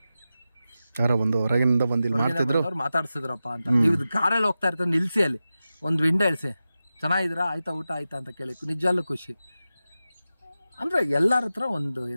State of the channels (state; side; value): inverted; both; correlation -0.93